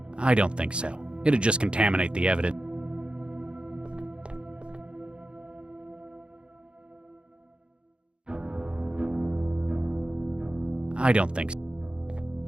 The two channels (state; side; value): late; left; 0.055 ms